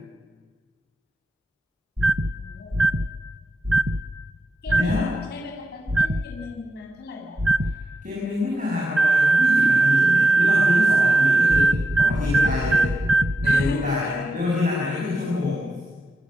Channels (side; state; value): both; normal; correlation 0.87